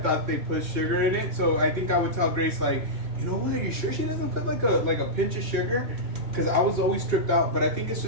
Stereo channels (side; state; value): left; late; 2.9 ms